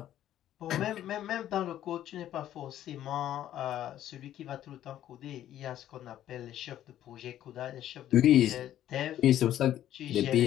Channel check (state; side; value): quieter; right; 12.0 dB